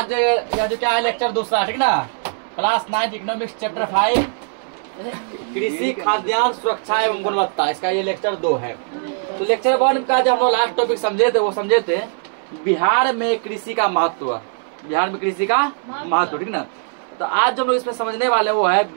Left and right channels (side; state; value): left; silent; 62 dB below the other